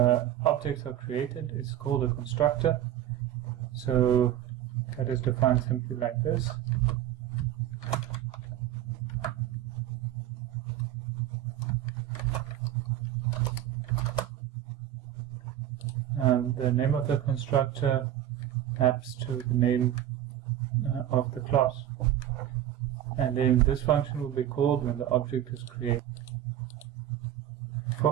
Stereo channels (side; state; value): left; quieter; 11.8 dB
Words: objects are created is called a constructor. So that is defined simply like this. The name of the constructor maps to the name of the class. And then this function will be called when the object is created. For